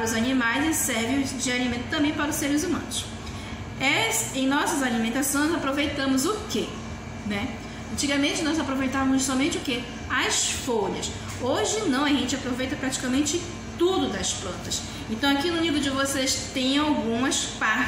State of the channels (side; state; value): both; identical; correlation 1.00